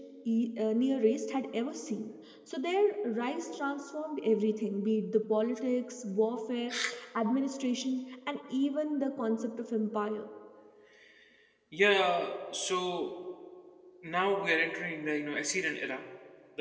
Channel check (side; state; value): both; identical; correlation 1.00